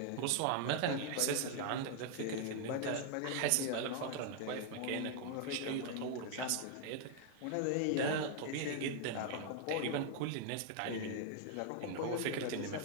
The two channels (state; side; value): different; both; correlation 0.00